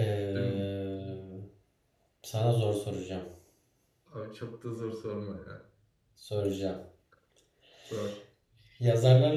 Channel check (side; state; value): both; identical; correlation 1.00